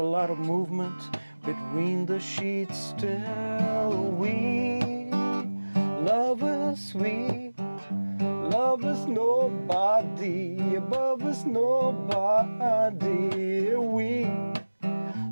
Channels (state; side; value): inverted; both; correlation -1.00